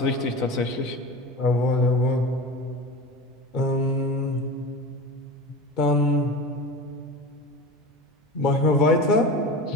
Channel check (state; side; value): normal; both; correlation 0.31